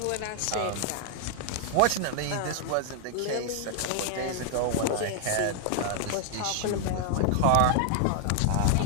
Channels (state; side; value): different; both; correlation 0.00